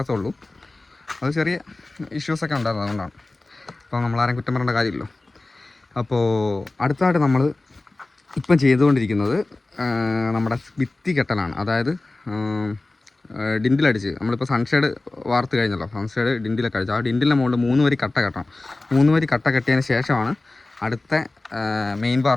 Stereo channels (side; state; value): right; quieter; 3.0 dB